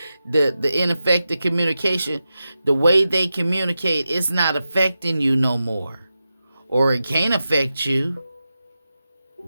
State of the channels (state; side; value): inverted; both; correlation -0.91